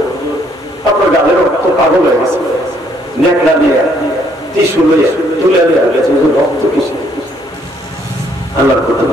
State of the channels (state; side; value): normal; both; correlation 0.67